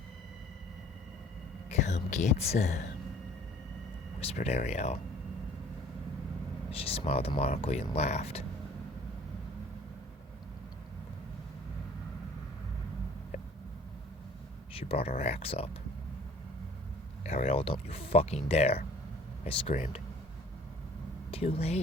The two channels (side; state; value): both; normal; correlation 0.52